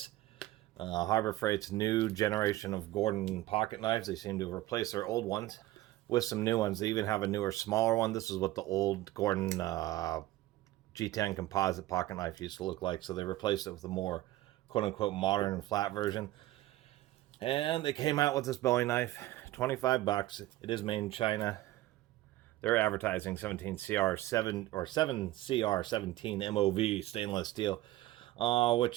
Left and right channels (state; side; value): quieter; left; 16.1 dB